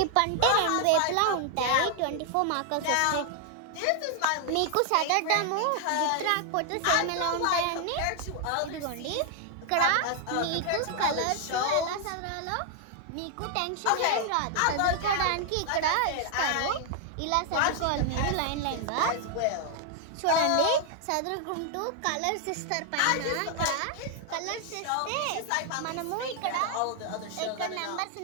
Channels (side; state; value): both; different; correlation 0.00